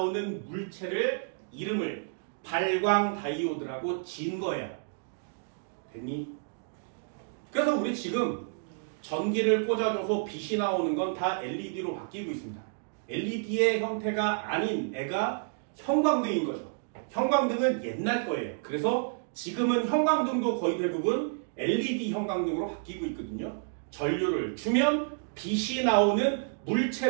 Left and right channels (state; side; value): silent; left; digital silence